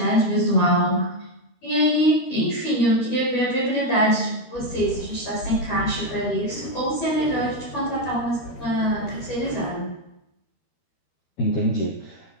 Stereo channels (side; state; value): right; late; 13 ms